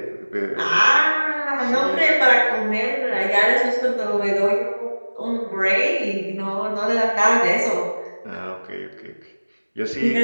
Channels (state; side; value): inverted; both; correlation -1.00